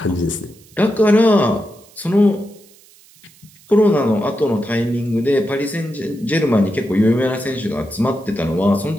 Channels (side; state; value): right; noise; hiss, 27 dB below the sound